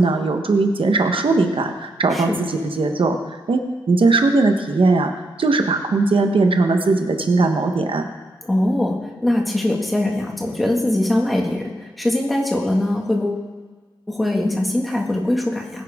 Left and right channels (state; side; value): normal; both; correlation 0.81